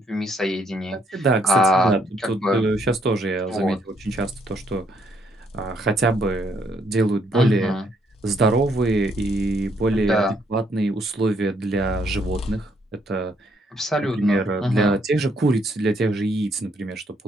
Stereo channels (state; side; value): normal; both; correlation 0.70